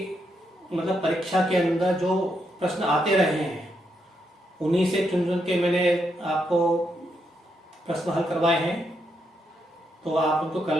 मतलब परीक्षा के अंदर जो प्रश्न आते रहे हैं उन्हीं से चुन चुन के मैंने आपको प्रश्न हल करवाए हैं, तो आप उनको कर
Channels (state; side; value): normal; both; correlation 0.80